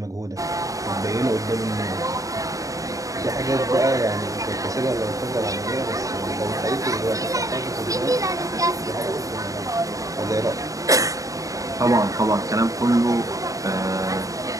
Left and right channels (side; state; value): left; late; 0.16 ms